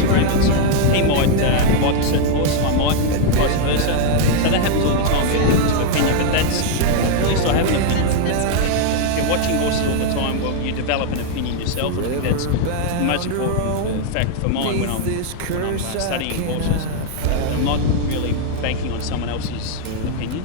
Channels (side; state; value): both; different; correlation 0.00